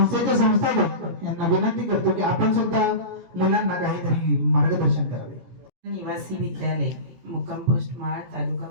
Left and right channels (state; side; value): late; left; 17 ms